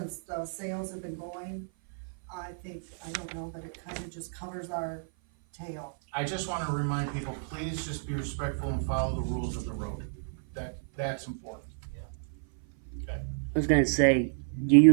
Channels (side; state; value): left; silent; 55 dB below the other